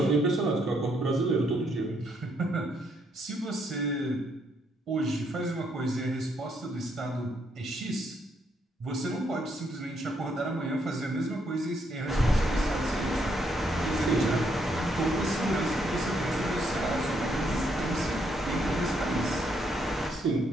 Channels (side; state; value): both; normal; correlation 0.74